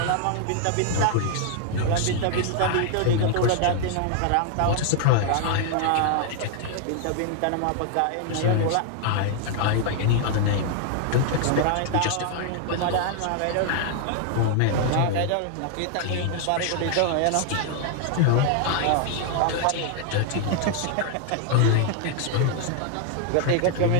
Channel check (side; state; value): both; different; correlation 0.00